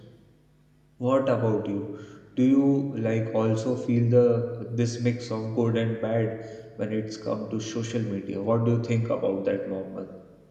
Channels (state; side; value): identical; both; correlation 1.00